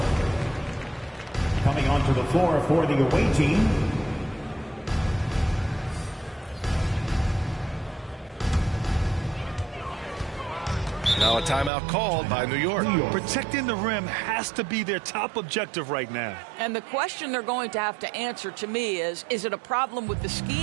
Coming onto the floor for the away team. Now a timeout called by New York. Protecting the rim has to be their top objective right now. And the question they're going to have to answer to me is it a problem with the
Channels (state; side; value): drops out; left; at 11.7 s